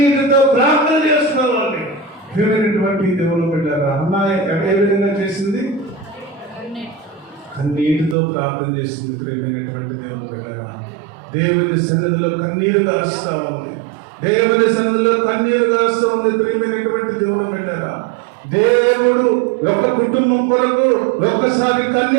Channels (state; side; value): drops out; left; at 8.2 s